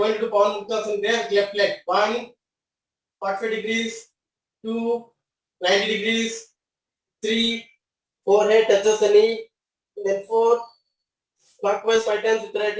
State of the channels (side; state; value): both; identical; correlation 1.00